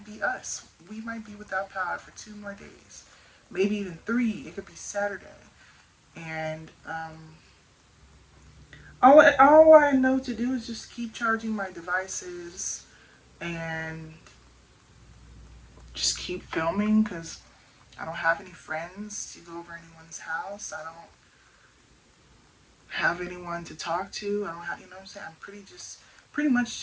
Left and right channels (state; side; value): identical; both; correlation 1.00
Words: be us. We might be without power for 2 more days, maybe even three. It could be Saturday, and all I know to do is just keep charging my devices and just keep filming because I don't have any friends to go over anyone's house. I don't have anyone to talk to. I don't have, what I'm saying? I'm pretty much